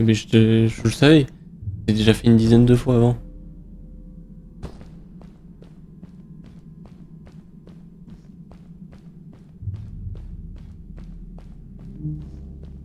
je le savais. J'ai déjà fait une dizaine de fois avant.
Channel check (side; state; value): both; identical; correlation 1.00